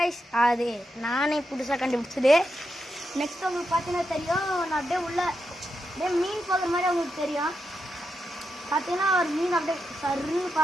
அது நானே புதுசாக கண்டுபிடிச்சது. நெக்ஸ்ட் உங்களுக்கு பார்த்தீங்கன்னா தெரியும், நான் அப்படியே அப்படியே மீன் போகிற மாதிரி உங்களுக்கு தெரியும். பார்த்தீங்கன்னா ஒரு மீன் அப்படியே சர்ன்னு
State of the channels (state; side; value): normal; both; correlation 0.86